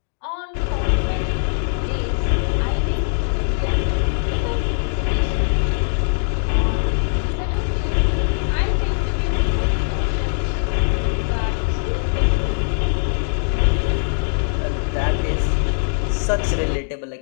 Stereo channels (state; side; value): silent; right; digital silence